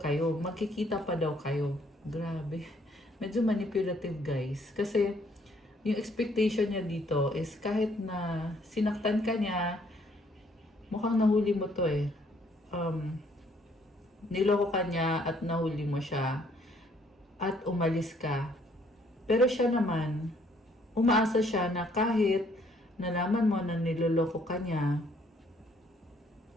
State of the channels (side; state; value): both; normal; correlation 0.65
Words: Magkikita pa daw kayo. Grabe. Medyo manipulative, guys. Kasi, yung expectation niya dito is kahit na sinaktan ka niya, mukhang nahuli mo to eh. Niloko ka niya at nahuli mo siya. At umalis ka. Pero siya naman, umaasa siya na kahit nalaman mo na niloloko ka niya,